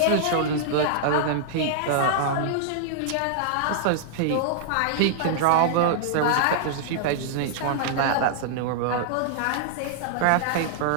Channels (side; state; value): both; different; correlation -0.01